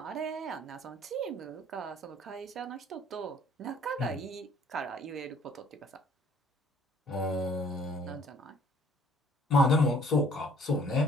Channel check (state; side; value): normal; both; correlation 0.58